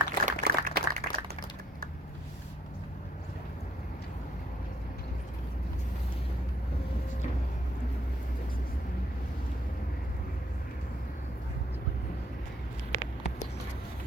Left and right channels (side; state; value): both; normal; correlation 0.67